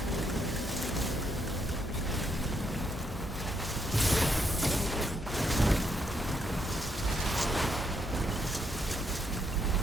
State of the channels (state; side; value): normal; both; correlation 0.76